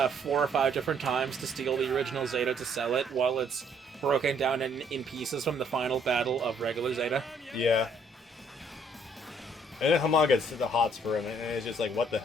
or 5 different times to steal the original Zeta to sell it while it's broken down in pieces from the final battle of regular Zeta. Yeah. And then Hamon gets the hots for him, and it's just like, what the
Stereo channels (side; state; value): both; normal; correlation 0.65